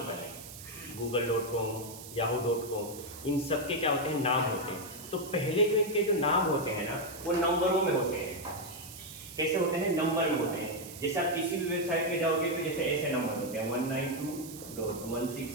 है, google.com, yahoo.com, इन सब के क्या होते हैं, नाम होते हैं। तो पहले जो इनके जो नाम होते हैं ना, वो नंबरों में होते हैं। कैसे होते हैं? नंबर में होते हैं। जैसे आप किसी भी वेबसाइट पे जाओगे तो जैसे ऐसे नंबर होते हैं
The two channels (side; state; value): right; noise; hiss, 14 dB below the sound